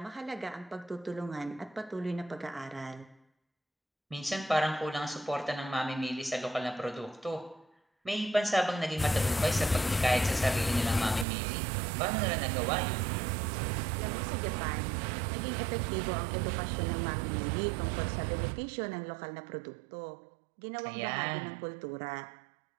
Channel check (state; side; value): drops out; left; at 11.2 s